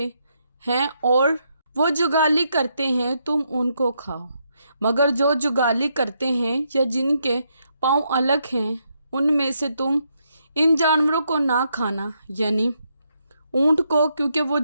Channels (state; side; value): inverted; both; correlation -0.78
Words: ہیں اور وہ جگالی کرتے ہیں تم ان کو کھاؤ، مگر جو جگالی کرتے ہیں یا جن کے پاؤں الگ ہیں ان میں سے تم ان جانوروں کو نہ کھانا، یعنی اونٹ کو، کیونکہ وہ